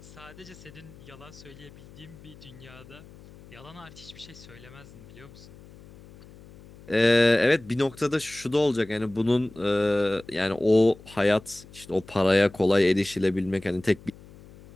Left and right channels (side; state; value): left; noise; hum, 21 dB below the sound